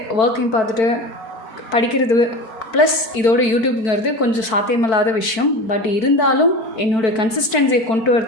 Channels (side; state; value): right; late; 4.5 ms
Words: ஒர்க்கையும் பார்த்துட்டு படிக்கிறது ப்ளஸ் இதோட யூடியூப்ங்கிறது கொஞ்சம் சாத்தியமில்லாத விஷயம். பட் இருந்தாலும் என்னோடய கன்சிஸ்டன்சியை கொண்டு